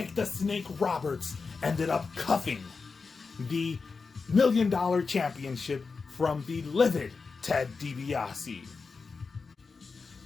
the Snake Roberts ended up cuffing the $1 Million Championship from the livid Ted DiBiase.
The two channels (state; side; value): quieter; right; 4.7 dB